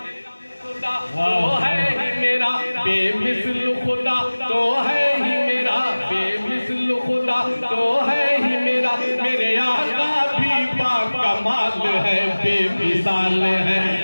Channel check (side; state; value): both; inverted; correlation -1.00